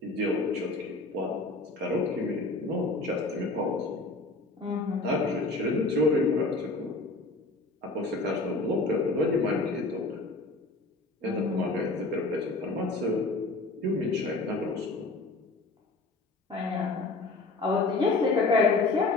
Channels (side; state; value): right; quieter; 3.2 dB